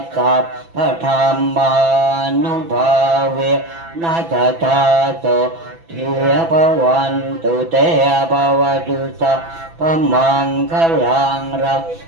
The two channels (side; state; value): left; late; 6.0 ms